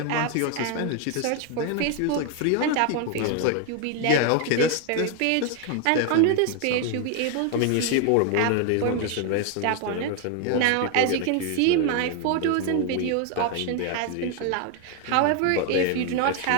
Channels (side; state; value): both; different; correlation 0.01